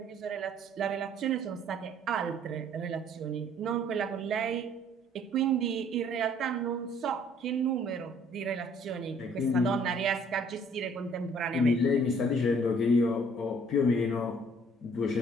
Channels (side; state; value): both; normal; correlation 0.59